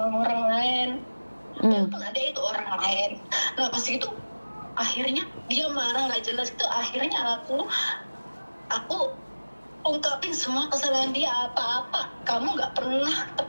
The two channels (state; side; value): inverted; both; correlation -1.00